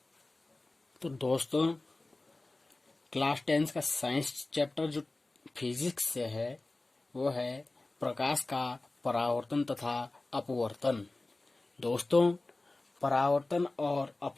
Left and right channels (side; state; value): right; quieter; 3.0 dB